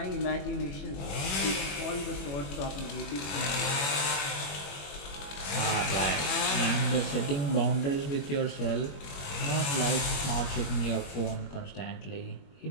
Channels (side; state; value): right; late; 21 ms